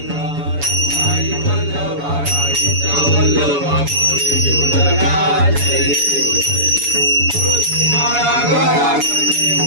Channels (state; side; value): late; left; 7.0 ms